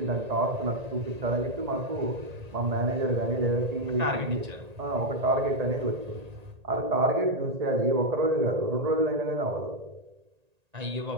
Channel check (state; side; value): late; left; 1.8 ms